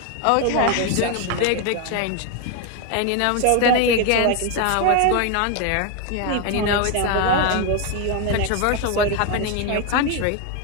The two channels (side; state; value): both; different; correlation 0.01